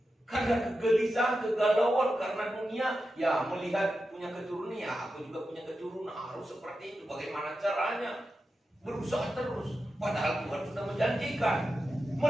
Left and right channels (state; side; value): normal; both; correlation 0.90